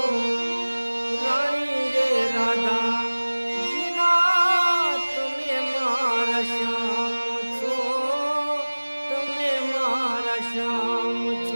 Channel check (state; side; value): inverted; both; correlation -1.00